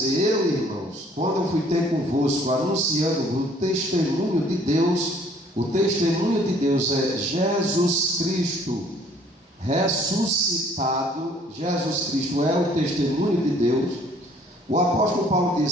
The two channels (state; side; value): normal; both; correlation 0.58